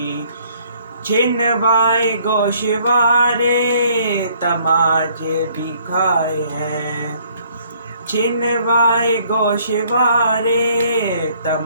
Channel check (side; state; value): both; inverted; correlation -0.62